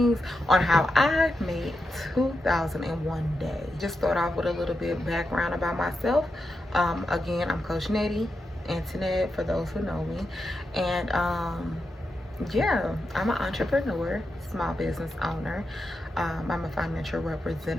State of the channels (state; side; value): normal; both; correlation 0.87